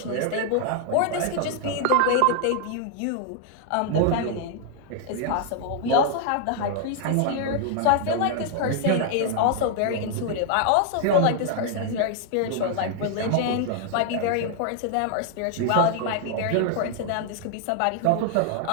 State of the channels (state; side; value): different; both; correlation 0.00